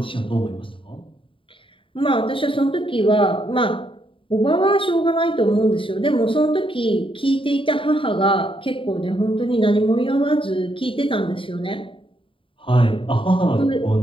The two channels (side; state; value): right; late; 0.25 ms